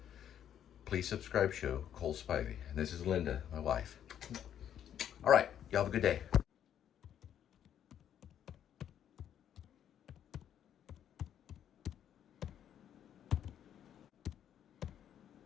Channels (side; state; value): right; quieter; 9.8 dB